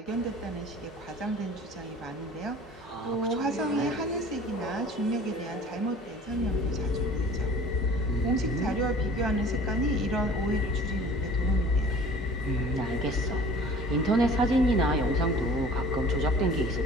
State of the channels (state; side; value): normal; both; correlation 0.47